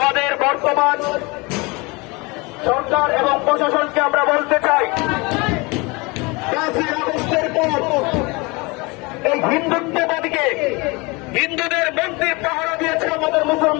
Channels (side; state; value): right; quieter; 26.2 dB